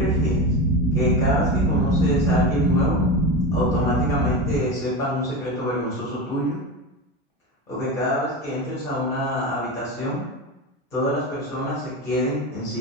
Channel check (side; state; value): both; normal; correlation 0.22